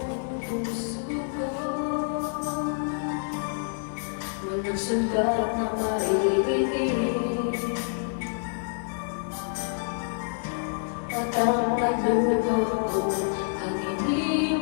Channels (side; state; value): right; silent; digital silence